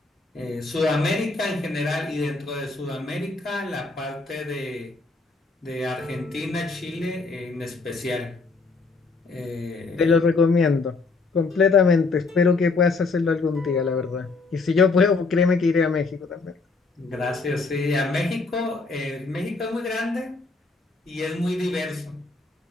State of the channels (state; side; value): quieter; right; 3.9 dB